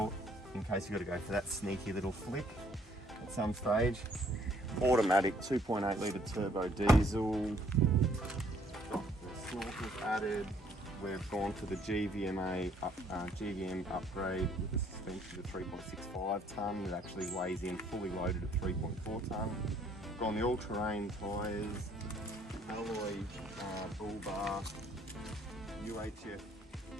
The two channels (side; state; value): both; normal; correlation 0.63